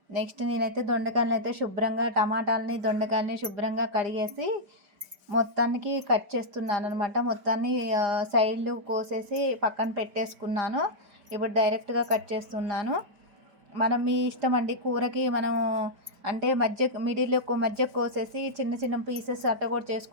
నెక్స్ట్ నేనైతే దొండకాయలను అయితే దొండకాయలని శుభ్రంగా కడిగేసి మొత్తానికి కట్ చేస్తున్నాను అనమాట. మొత్తాన్ని సైడ్లు కోసేసి పక్కన పెట్టేసుకున్నాను. ఇప్పుడు డైరెక్ట్గా కట్ చేస్తున్నాను. మనం మీ ఇష్టం అండి. కూరకి మనం అంటే మధ్య కోసేసి చిన్న చిన్న పీసెస్ అట్ట కూడా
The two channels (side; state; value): left; late; 5.1 ms